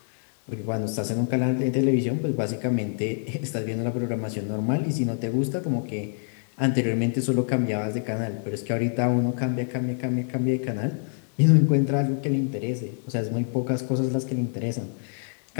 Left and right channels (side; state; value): right; silent; digital silence